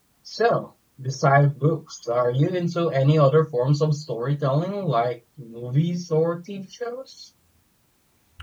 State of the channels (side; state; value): both; identical; correlation 1.00